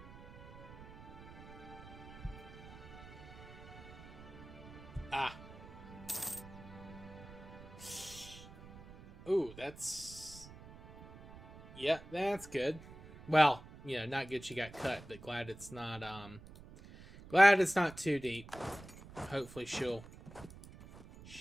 Ah. That's... Yeah, that's good. Well, you know, not good she got cut, but glad it's not, glad it's not too deep. Hopefully she'll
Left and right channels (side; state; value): right; noise; rumble, 17 dB below the sound